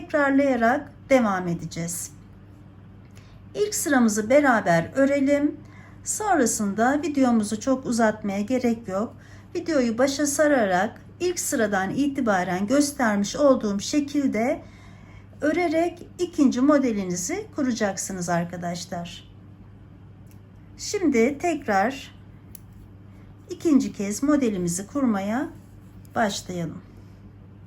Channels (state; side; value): identical; both; correlation 1.00